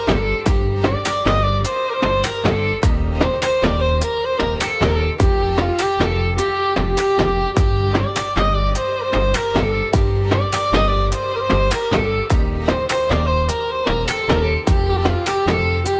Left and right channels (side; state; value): both; identical; correlation 1.00